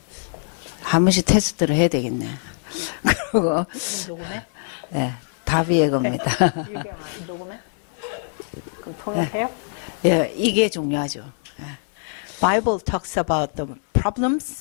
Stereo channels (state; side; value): silent; right; digital silence